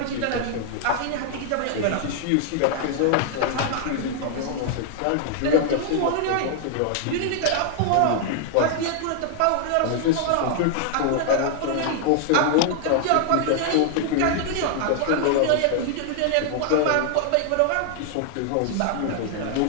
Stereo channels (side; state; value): both; different; correlation 0.00